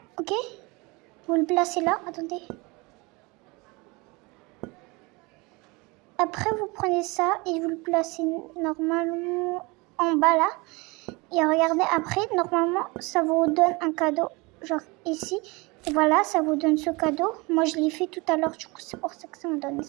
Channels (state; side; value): quieter; left; 25.9 dB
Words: ok? Vous le placez là. Attendez. Après, vous prenez ça et vous le placez normalement en bas là. Et regardez, après, normalement, ça vous donne un cadeau, genre ici. Et voilà, ça vous donne ce cadeau. Moi, je l'ai fait tout à l'heure, du coup, c'est pour ça que ça m'a donné